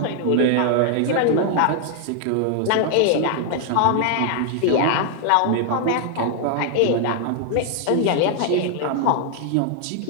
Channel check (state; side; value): different; both; correlation 0.00